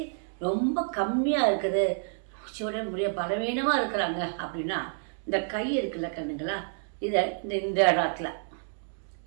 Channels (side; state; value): left; silent; digital silence